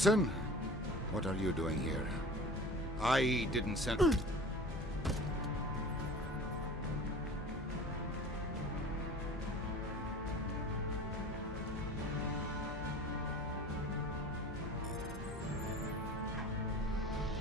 what are you doing here? I didn't send...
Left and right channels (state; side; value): normal; both; correlation 0.39